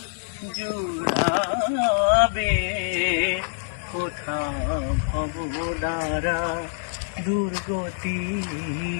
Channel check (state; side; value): silent; right; digital silence